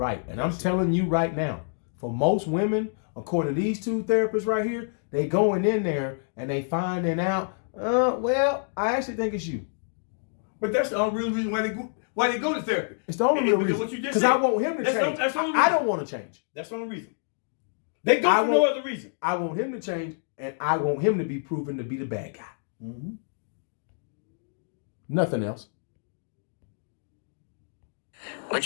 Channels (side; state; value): right; silent; digital silence